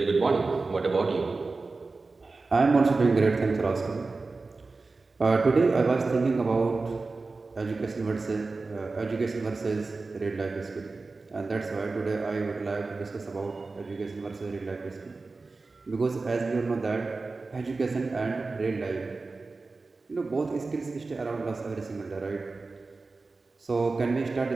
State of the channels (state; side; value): quieter; left; 3.8 dB